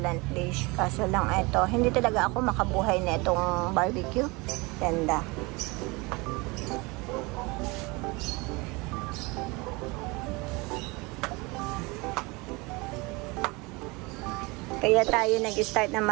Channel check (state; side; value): quieter; left; 25.6 dB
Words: dish. Kaso lang ito, hindi talaga ako makabuhay na itong barbecue. Ganda. Kaya tayo nag-start na